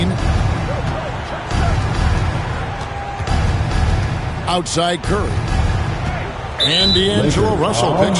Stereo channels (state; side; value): identical; both; correlation 1.00